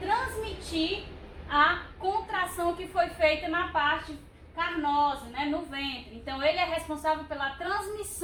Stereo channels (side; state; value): both; identical; correlation 1.00